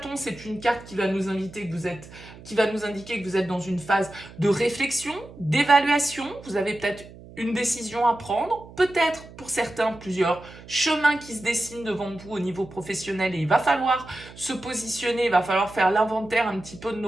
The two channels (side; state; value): right; noise; hum, 18 dB below the sound